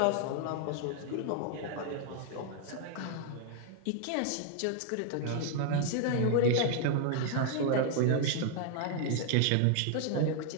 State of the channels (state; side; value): different; both; correlation 0.00